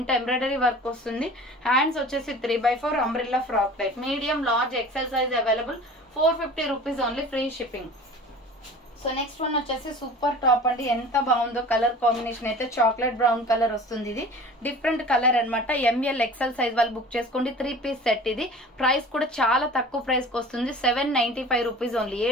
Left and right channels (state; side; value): normal; both; correlation 0.41